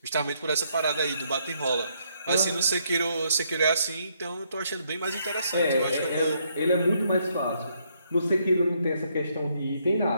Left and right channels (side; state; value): both; inverted; correlation -0.73